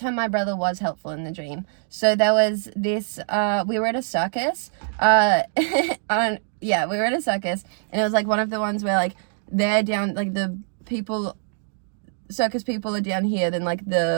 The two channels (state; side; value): silent; left; digital silence